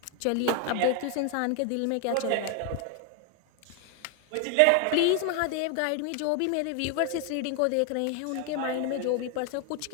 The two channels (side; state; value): both; different; correlation 0.01